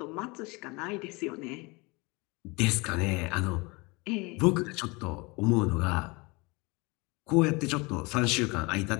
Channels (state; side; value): quieter; right; 26.4 dB